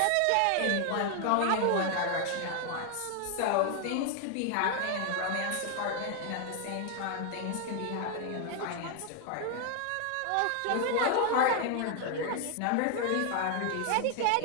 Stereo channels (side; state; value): both; different; correlation 0.00